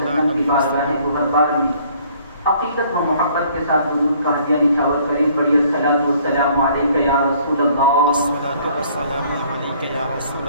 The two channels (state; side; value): inverted; both; correlation -0.59